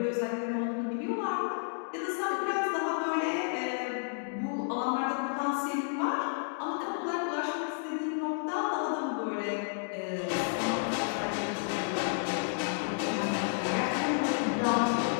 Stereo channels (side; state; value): right; silent; digital silence